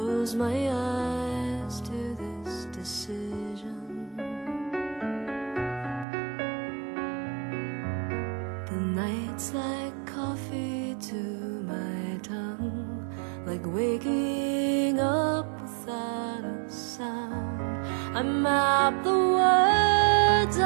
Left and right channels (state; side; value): drops out; left; at 6.1 s